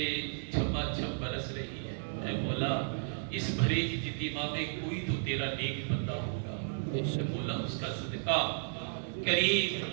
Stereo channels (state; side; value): silent; left; digital silence